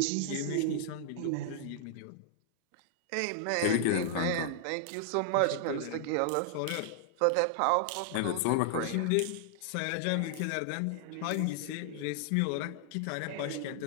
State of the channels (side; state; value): both; different; correlation -0.01